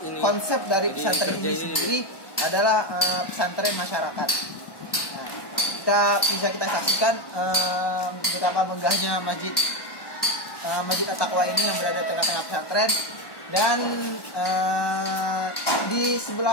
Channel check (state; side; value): late; right; 1.1 ms